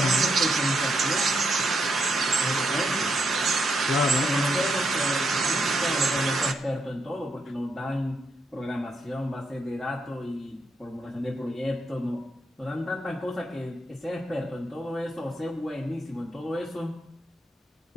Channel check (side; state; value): both; normal; correlation 0.79